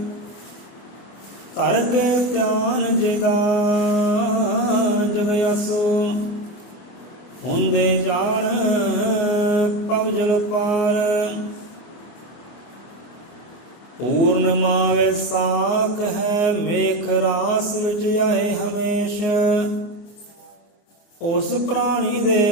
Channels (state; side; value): late; right; 24 ms